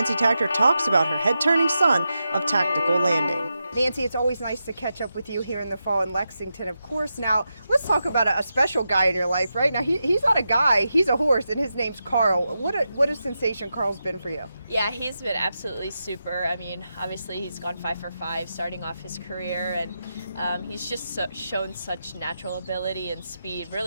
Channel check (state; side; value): inverted; both; correlation -0.88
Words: Takter talks about her head-turning son of tactical landing. Nancy, it's always nice to catch up with you here in the fall in Lexington, of course. Now, let's talk about a special guy in your life, right? Now, he's not a guy, he's a horse, and his name's Karl. What a sensation Karl's been for you. Yeah, he's been absolutely super. I mean, obviously he's gone 5 for 5 starting off his career, and he's just shown such natural ability and speed